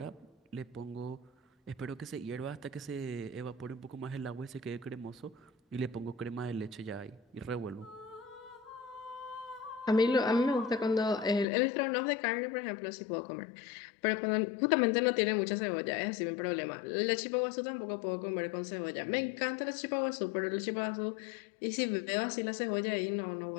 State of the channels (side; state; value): right; drops out; at 11.5 s